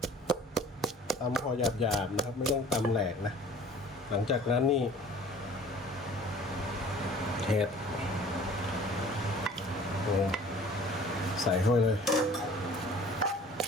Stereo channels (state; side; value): normal; both; correlation 0.49